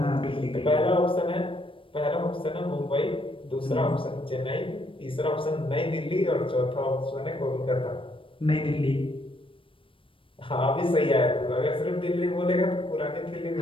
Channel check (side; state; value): right; late; 0.25 ms